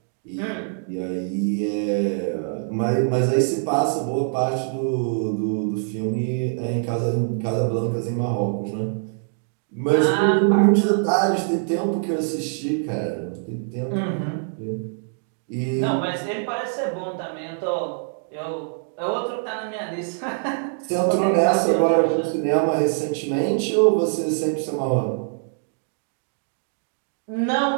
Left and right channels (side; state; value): left; silent; digital silence